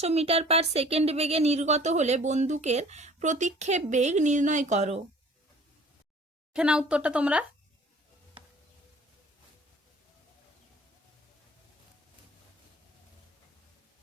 মিটার/সেকেন্ড বেগে নির্গত হলে বন্দুকের প্রতিক্ষেপ বেগ নির্ণয় করো। দেখে নাও উত্তরটা তোমরা।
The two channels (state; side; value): normal; both; correlation 0.50